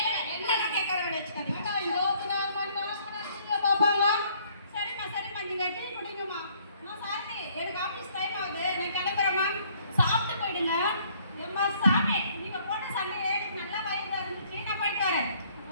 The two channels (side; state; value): both; inverted; correlation -0.63